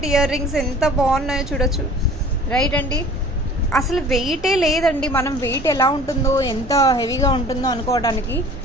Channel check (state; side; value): normal; both; correlation 0.47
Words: ear rings ఎంత బాగున్నాయో చూడొచ్చు. రైట్ అండి, అసలు వెయిటే లేదండి. మనం వెయిట్ ఎలా ఉంటుందో, ఎంత హెవీగా ఉంటుందో అనుకోవడానికి